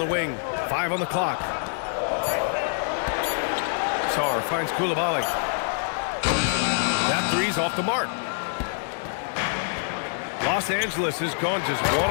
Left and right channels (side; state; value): right; silent; digital silence